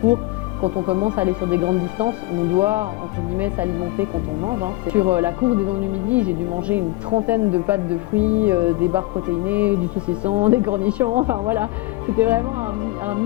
quand on commence à aller sur des grandes distances, on doit entre guillemets s'alimenter quand on mange. Sur la course des Dents du Midi, j'ai dû manger une 30aine de pâtes de fruits, des barres protéinées, du saucisson, des cornichons, enfin voilà, c'était vraiment un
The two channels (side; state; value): right; quieter; 20.0 dB